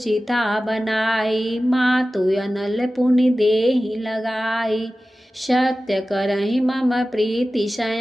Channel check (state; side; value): normal; both; correlation 0.95